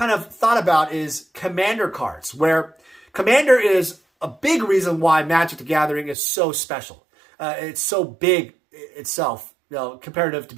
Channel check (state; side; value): drops out; left; at 6.2 s